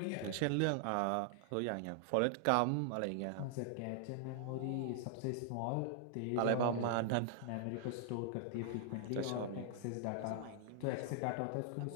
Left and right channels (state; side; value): different; both; correlation -0.01